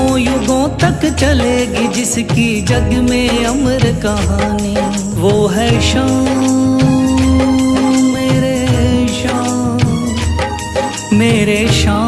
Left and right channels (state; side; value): identical; both; correlation 1.00